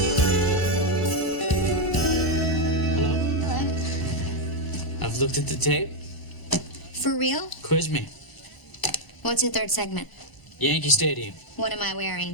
Hello? I've looked at the tape. For real? Quiz me. What's your third segment? Yankee Stadium. What am I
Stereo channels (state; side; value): late; right; 1.1 ms